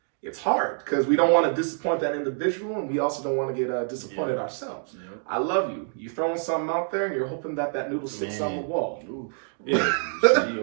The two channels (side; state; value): left; silent; digital silence